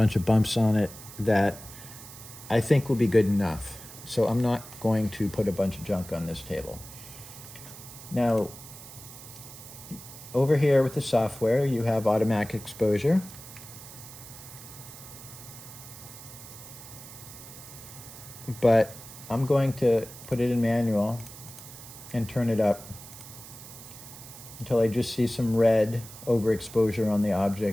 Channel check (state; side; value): noise; right; hiss, 15 dB below the sound